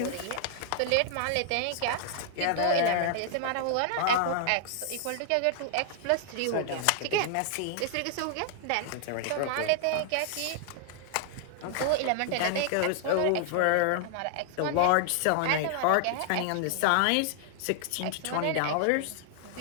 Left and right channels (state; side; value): different; both; correlation -0.01